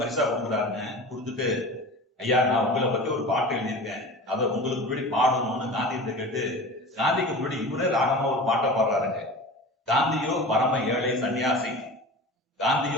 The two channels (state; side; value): normal; both; correlation 0.34